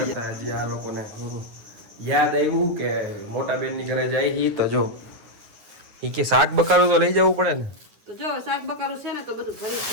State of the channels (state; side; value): late; left; 9.7 ms